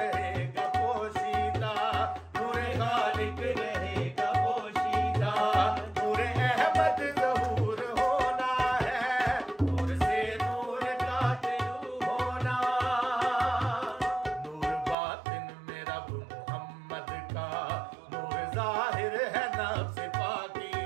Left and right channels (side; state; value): left; drops out; at 15.0 s